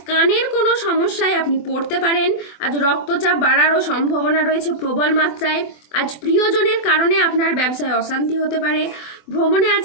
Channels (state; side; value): late; right; 24 ms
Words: কানের কোনো সমস্যায় আপনি পড়তে পারেন। আজ রক্তচাপ বাড়ারও সম্ভাবনা রয়েছে প্রবল মাত্রায়। আজ প্রিয়জনের কারণে আপনার ব্যবসায় অশান্তি হতে পারে। ভ্রমণে